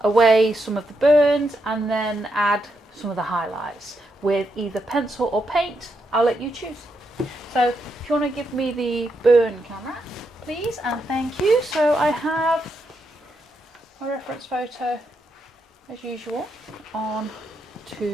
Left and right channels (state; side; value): normal; both; correlation 0.81